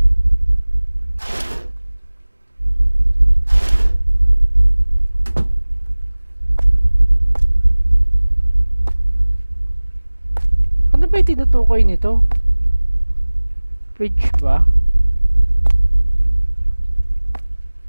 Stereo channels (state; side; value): inverted; both; correlation -1.00